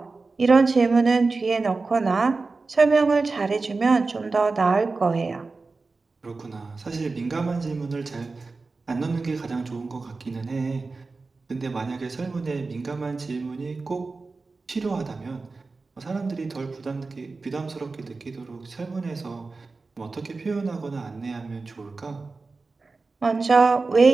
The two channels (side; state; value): left; quieter; 3.9 dB